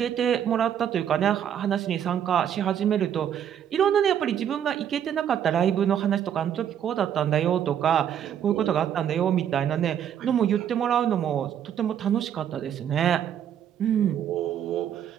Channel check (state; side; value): quieter; left; 9.4 dB